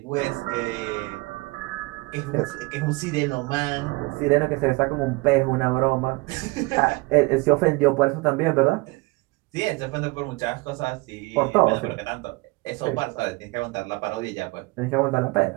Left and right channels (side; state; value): left; quieter; 24.6 dB